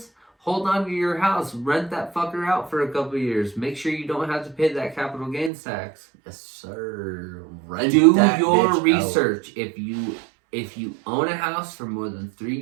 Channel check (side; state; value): left; drops out; at 5.5 s